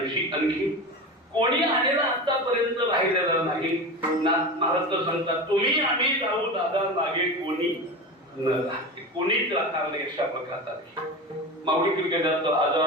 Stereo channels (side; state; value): both; normal; correlation 0.26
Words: आणखी कोणी आलेला आतापर्यंत राहिलेला नाही ना. महाराज तर सांगतात तुम्ही आम्ही जाऊ दादा मागे कोणी न राहते कोणीच राहणार नाही अशा प्रकारचा माऊली क्रिकेटात